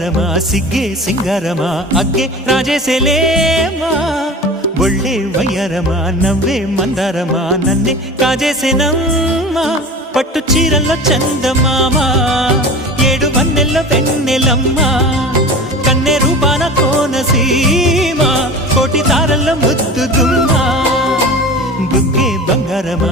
ಸಿಗ್ಗೆ ಸಿಂಗಾರಮ ಅಗ್ಗೆ ರಾಜೇಸೆಲೇಮಾ ಒಳ್ಳೆ వయ్యారమ నవ్వే మందారమ నన్నే కాజేసేనమ్మ పట్టు చీరల్లో చందమామ ఏడు వన్నెల్లో వెన్నెలమ్మ కన్నె రూపాన కోనసీమ కోటి తారల్లో ముద్దుగుమ్మ బుగ్గే బంగారమ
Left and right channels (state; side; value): normal; both; correlation 0.35